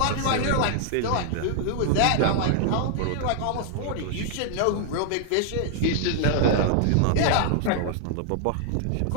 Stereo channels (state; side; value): different; both; correlation -0.01